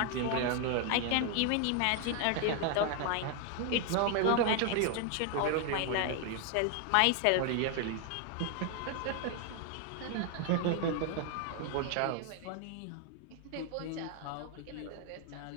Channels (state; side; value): different; both; correlation 0.00